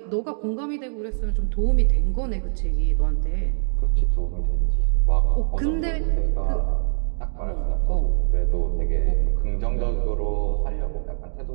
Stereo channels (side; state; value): left; silent; 63 dB below the other